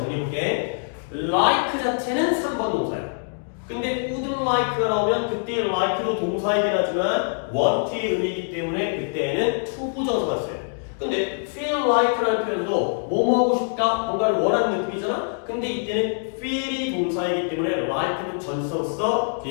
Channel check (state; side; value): silent; right; digital silence